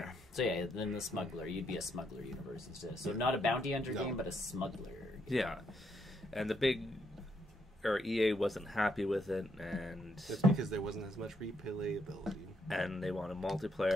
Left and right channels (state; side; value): normal; both; correlation 0.75